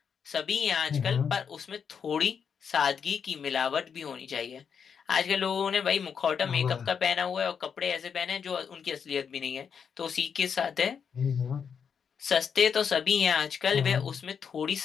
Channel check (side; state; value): right; quieter; 6.9 dB